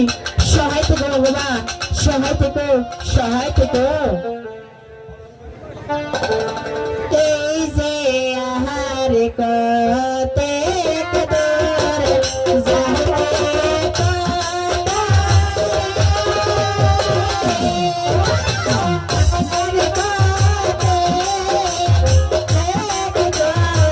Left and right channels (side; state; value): both; identical; correlation 1.00